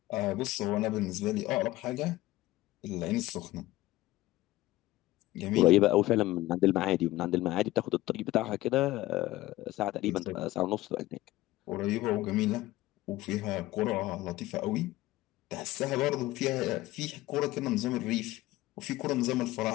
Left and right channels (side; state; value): right; quieter; 17.4 dB